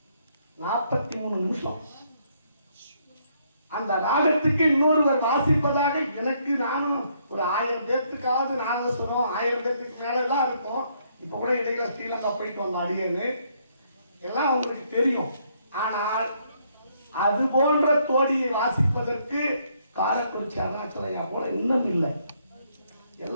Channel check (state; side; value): inverted; both; correlation -0.71